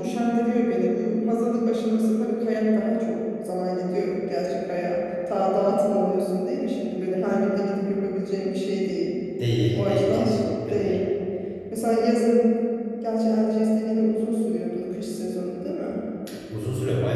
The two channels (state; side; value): identical; both; correlation 1.00